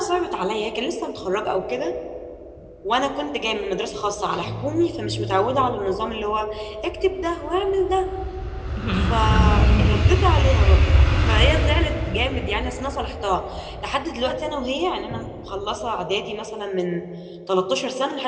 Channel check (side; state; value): both; identical; correlation 1.00